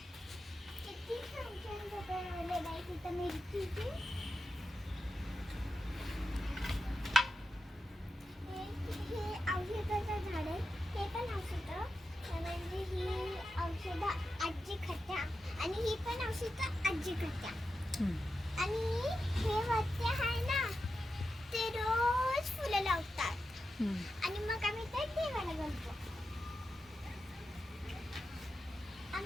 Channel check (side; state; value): both; normal; correlation 0.90